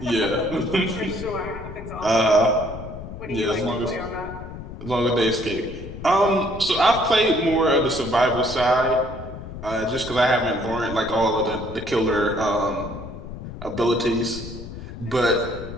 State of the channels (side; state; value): left; noise; rumble, 11 dB below the sound